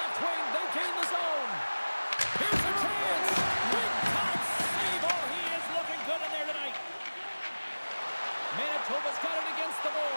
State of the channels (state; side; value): inverted; both; correlation -1.00